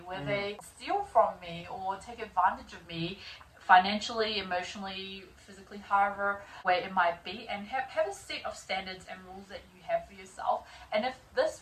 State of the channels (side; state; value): both; identical; correlation 1.00